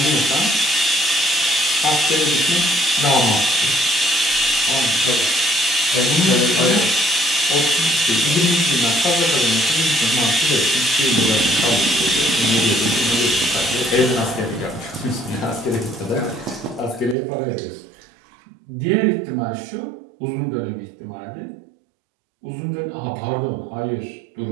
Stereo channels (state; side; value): drops out; left; at 17.2 s